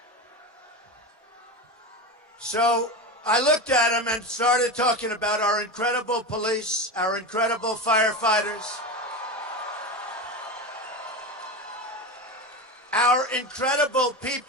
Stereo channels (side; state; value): both; normal; correlation 0.22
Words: So I looked at him and started talking about our incredible police, our incredible firefighters, our incredible